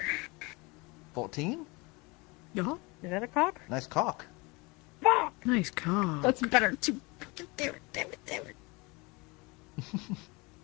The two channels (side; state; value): right; quieter; 26.3 dB